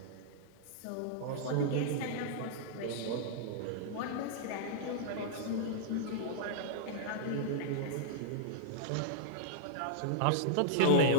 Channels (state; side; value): different; both; correlation -0.01